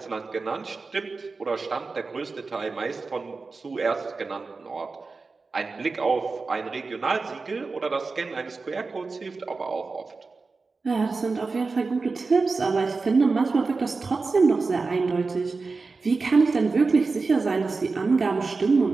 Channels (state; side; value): quieter; left; 4.1 dB